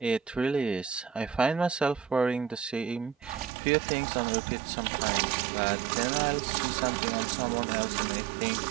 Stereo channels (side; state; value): left; drops out; at 3.5 s